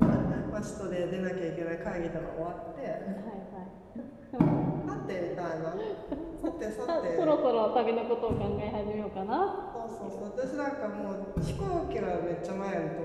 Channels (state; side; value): identical; both; correlation 1.00